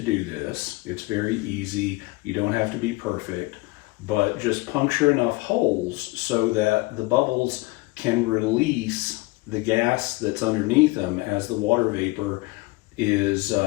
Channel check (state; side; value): quieter; right; 22.8 dB